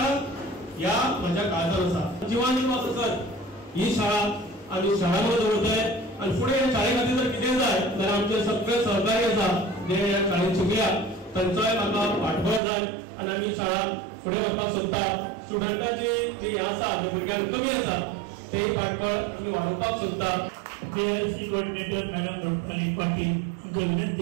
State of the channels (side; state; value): left; drops out; at 12.6 s